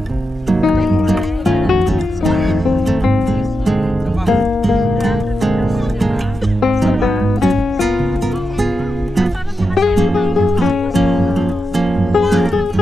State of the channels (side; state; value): both; normal; correlation 0.89